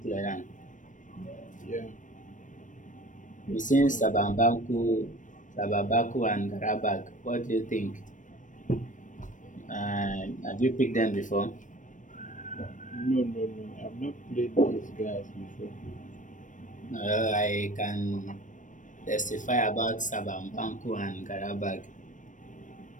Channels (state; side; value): late; right; 0.37 ms